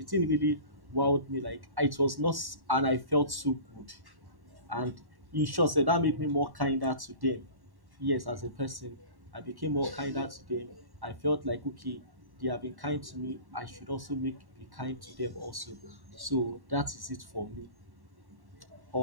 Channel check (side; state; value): left; late; 1.1 ms